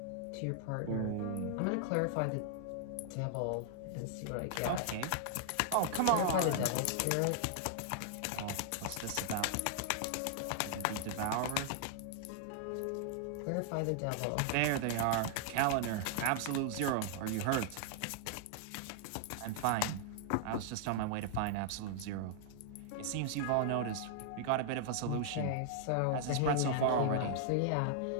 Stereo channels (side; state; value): both; different; correlation -0.01